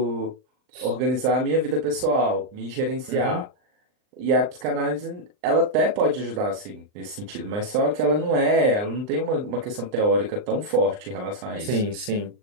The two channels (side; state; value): left; late; 39 ms